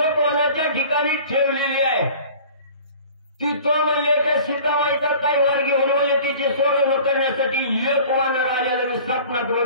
ठिकाणी ठेवलेली आहे तिथं म्हणजे त्या सीताबाईचा काही वार घेऊन म्हणजे तिची सोडवणूक करण्यासाठी एक वानर आलेलं मी स्वप्नात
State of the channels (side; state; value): both; inverted; correlation -0.45